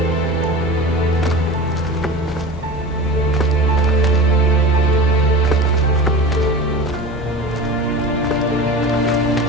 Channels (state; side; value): normal; both; correlation 0.31